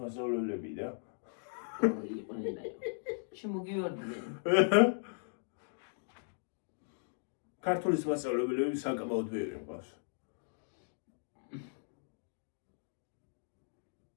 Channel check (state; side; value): silent; right; digital silence